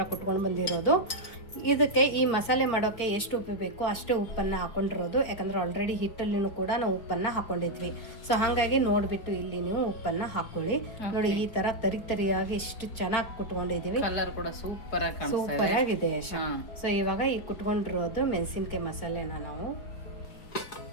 ಕುಟ್ಕೊಂಡು ಬಂದಿರೋದು. ಇದಕ್ಕೆ ಈ ಮಸಾಲೆ ಮಾಡೋಕ್ಕೆ ಎಷ್ಟು ಉಪ್ಪು ಬೇಕು ಅಷ್ಟೇ ಉಪ್ಪನ್ನು ಹಾಕೊಂಡಿರೋದು. ಯಾಕಂದರೆ ಆಲ್ರೆಡಿ ಹಿಟ್ಟಲ್ಲಿನೂ ಕೂಡ ನಾವು ಉಪ್ಪನ್ನು ಹಾಕೊಂಡಿದ್ವಿ. ಸೊ ಹಾಗಾಗಿ ನೋಡಿಬಿಟ್ಟು ಇಲ್ಲಿ ನೀವು ಉಪ್ಪನ್ನು ಹಾಕೊಳ್ಳಿ. ನೋಡಿ ಈ ಥರ ತರಿಯಾಗಿ ಎಷ್ಟು ಚೆನ್ನಾಗಿ ಕುಟ್ಕೊಂಡಿದ್ದೀವಿ. ಕಲರ್ ಕೂಡ ಸೂಪರ್ ಆಗಿದೆ. ಸೊ ಇವಾಗ ಈ ಕುಟ್ಕೊಂಡಿರೋದು ಮೆಣಸಿನ್ಕಾಯಿ ಮಸಾಲೆನ ನಾವು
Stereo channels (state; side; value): late; right; 4.4 ms